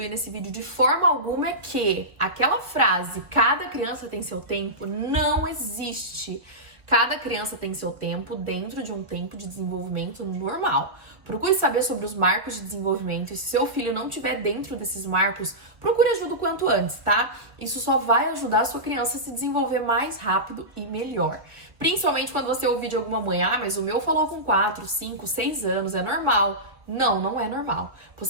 nesse vídeo de forma alguma é que aquela frase, cada criança tem seu tempo, não existe. Cada criança tem seu tempo dentro de um tempo de desenvolvimento normal. Procure saber sobre os marcos de desenvolvimento e se seu filho não estiver dentro desses marcos, procure ajuda o quanto antes, tá? Isso só vai ajudar a sua criança a se desenvolver mais rápido e melhor. Principalmente quando você ouvir de alguma mãe, mas o meu falou com 4, 5, 6 anos, é normal. Não, não é normal.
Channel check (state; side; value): late; left; 1.2 ms